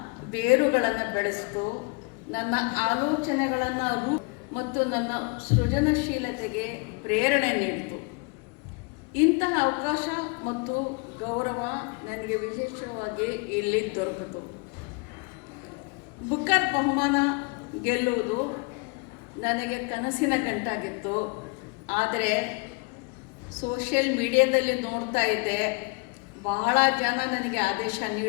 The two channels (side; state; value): right; quieter; 30.4 dB